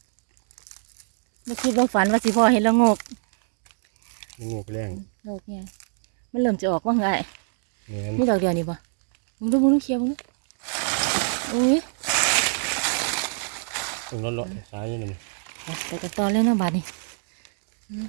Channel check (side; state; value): left; silent; digital silence